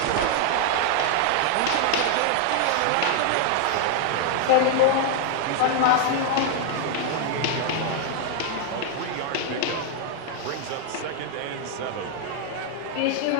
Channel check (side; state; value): both; different; correlation 0.00